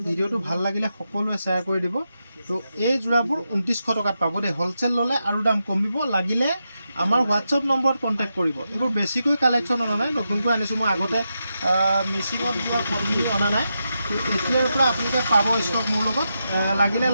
ভিডিঅ'টো ভাল লাগিলে সকলোৱে শ্বেয়াৰ কৰি দিব। তো এই যোৰাবোৰ 2900 টকাত পাব দেই। হ'লচেল ল'লে আৰু দাম কমিব, লাগিলে আমাৰ হোৱাটছআপ নম্বৰত কণ্টেক্ট কৰিব। এইবোৰ বেছিকৈ কালেকশ্যন অনা নাই, নতুনকৈ আনিছোঁ মই, আগতে মেচিনত যোৱা পদ্ধতি অনা নাই। তো এতিয়াৰ পৰা আপোনালোকে পাব ষ্টক মোৰ লগত, লাগিলে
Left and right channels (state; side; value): inverted; both; correlation -0.87